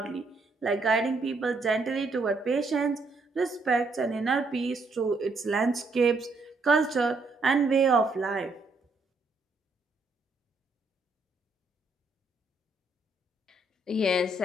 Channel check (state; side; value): quieter; left; 3.4 dB